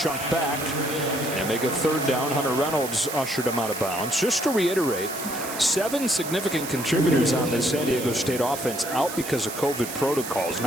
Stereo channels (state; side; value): noise; right; hiss, 9 dB below the sound